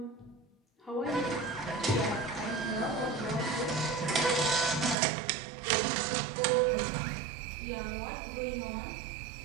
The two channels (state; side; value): drops out; left; at 5.0 s